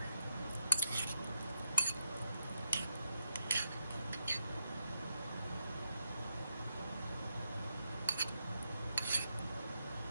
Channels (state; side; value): inverted; both; correlation -0.82